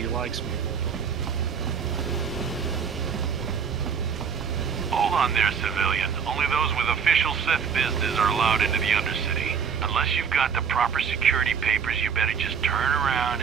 likes me. Hold on there, civilian. Only those with official Sith business are allowed into the Undercity. Unless you've got the proper security papers, you better just turn around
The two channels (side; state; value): left; quieter; 6.8 dB